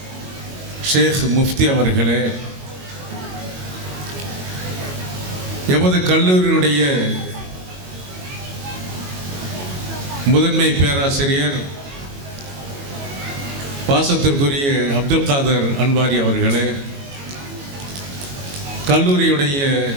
ஷேக் முஃப்தி அவர்களே, எமது கல்லூரியினுடைய முதன்மை பேராசிரியர் பாசத்திற்குரிய அப்துல் காதர் அன்வாரி அவர்களே, கல்லூரியுடைய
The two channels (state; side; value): late; left; 22 ms